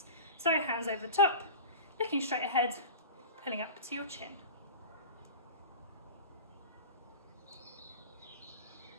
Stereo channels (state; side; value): inverted; both; correlation -0.33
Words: So hands over the top, looking straight ahead, pulling up to your chin.